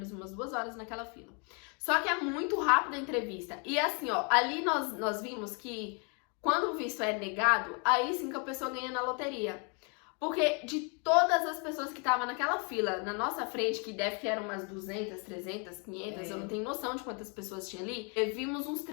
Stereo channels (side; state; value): right; quieter; 35.7 dB